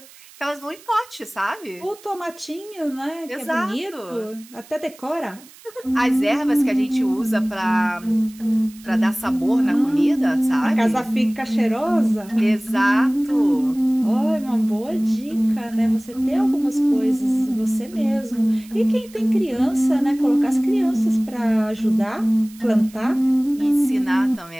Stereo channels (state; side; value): noise; right; hiss, 23 dB below the sound